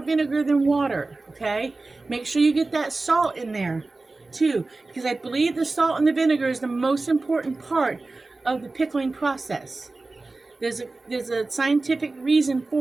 vinegar than water, okay? Make sure you get that salt in there, too, because I believe the salt and the vinegar is the most important part of the pickling process. There's a scientific reason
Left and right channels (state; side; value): quieter; left; 3.4 dB